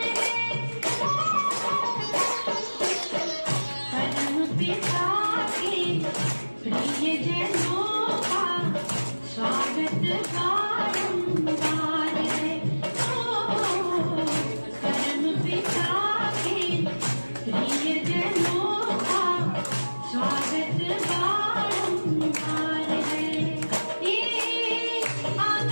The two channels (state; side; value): inverted; both; correlation -1.00